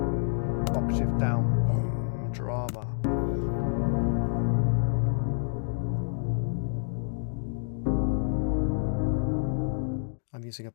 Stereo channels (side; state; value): right; silent; digital silence